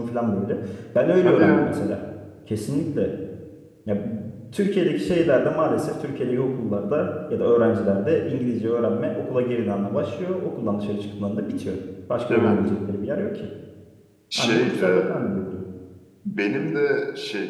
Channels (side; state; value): both; identical; correlation 1.00